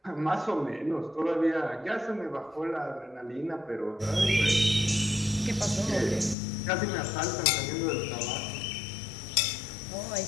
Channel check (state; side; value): drops out; right; at 6.4 s